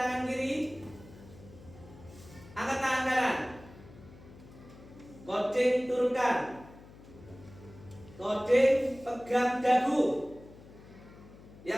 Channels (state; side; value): noise; left; hum, 20 dB below the sound